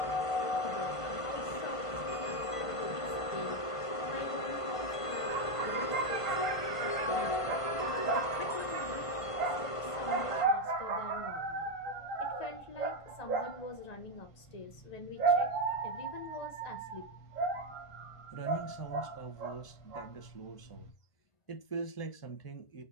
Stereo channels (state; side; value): late; right; 1.5 ms